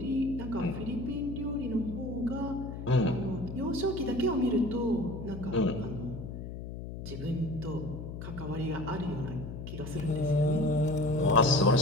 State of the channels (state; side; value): noise; left; hum, 8 dB below the sound